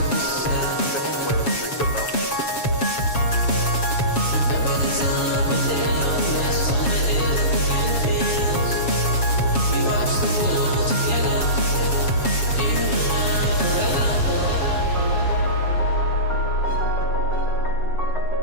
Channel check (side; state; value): right; late; 7.3 ms